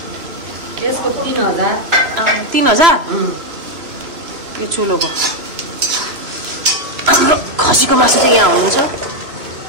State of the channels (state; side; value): late; left; 2.9 ms